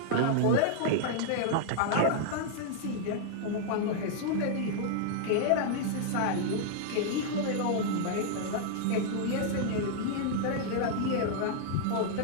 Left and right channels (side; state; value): both; different; correlation -0.01